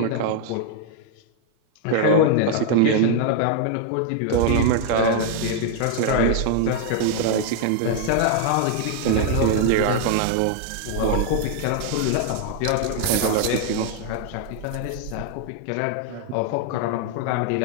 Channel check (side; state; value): both; different; correlation 0.00